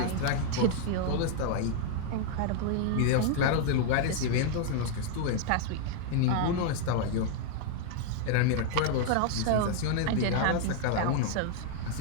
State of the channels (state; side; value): different; both; correlation 0.00